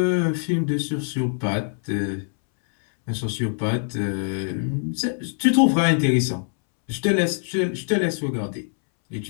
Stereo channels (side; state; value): right; silent; 63 dB below the other